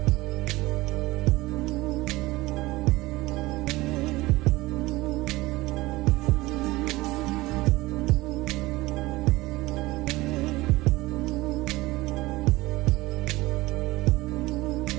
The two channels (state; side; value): quieter; left; 19.7 dB